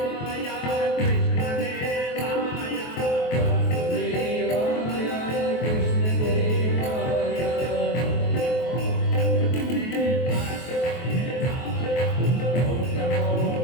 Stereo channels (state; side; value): late; right; 23 ms